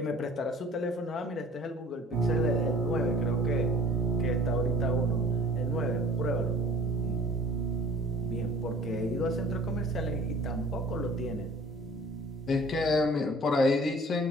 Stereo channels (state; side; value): normal; both; correlation 0.48